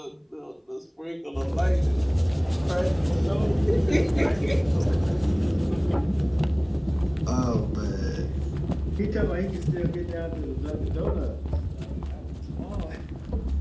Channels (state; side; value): identical; both; correlation 1.00